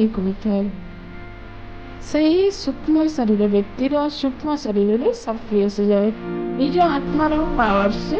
होता है सही सूक्ष्म शरीर व्यक्तिर सूक्ष्म शरीर में सक्रिय से जाए निज आत्मार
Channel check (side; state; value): both; identical; correlation 1.00